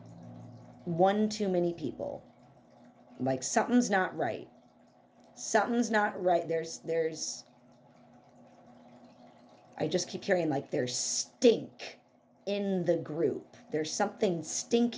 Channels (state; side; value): identical; both; correlation 1.00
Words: one too many people. Like something's not right. Something's not right. There's I just keep hearing like there's stink in the group. There's something